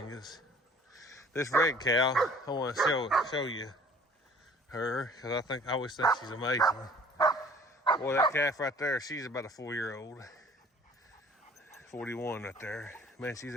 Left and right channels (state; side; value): normal; both; correlation 0.52